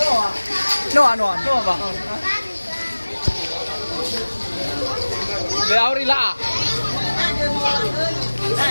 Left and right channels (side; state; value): both; inverted; correlation -1.00